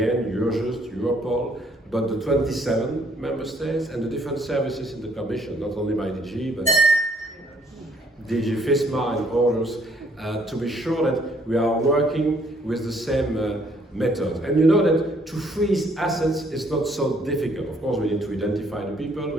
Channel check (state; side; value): normal; both; correlation 0.65